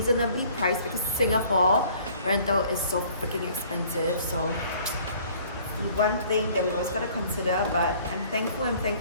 priced, because Singapore rental is so freaking expensive. So one thing that we always gotta consider, but I'm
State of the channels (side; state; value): both; inverted; correlation -0.54